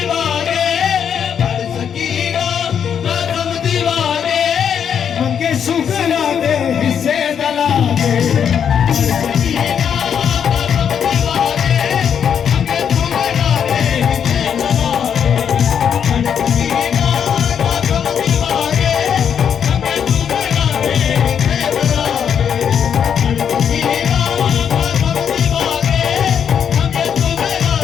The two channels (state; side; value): quieter; right; 8.0 dB